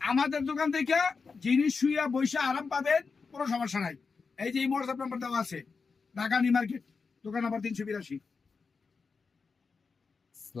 দোকান থেকে, জিনিস শুইয়া বৈশা আরাম পাবেন, কোনো সমস্যা নাই। এই যে এই হোয়াটসঅ্যাপ নাম্বার দেওয়া আছে, ঢাকা নিউ মার্কেট, দোকান নাম্বার 382।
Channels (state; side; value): quieter; right; 4.9 dB